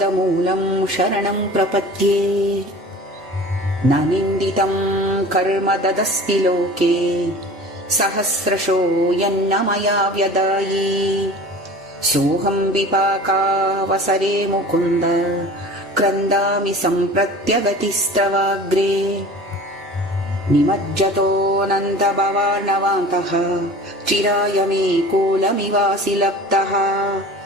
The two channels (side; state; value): both; normal; correlation 0.40